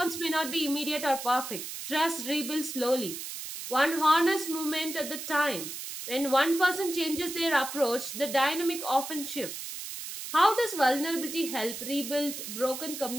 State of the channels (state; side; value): noise; right; hiss, 8 dB below the sound